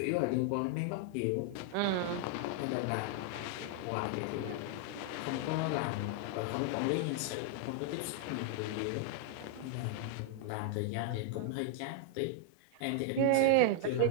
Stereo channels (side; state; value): both; different; correlation 0.00